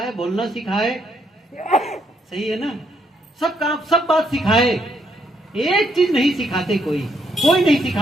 बोलना सिखाए, सही है ना, सब काम, सब बात सिखाए। एक चीज नहीं सिखाते, कोई नहीं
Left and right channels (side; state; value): both; normal; correlation 0.74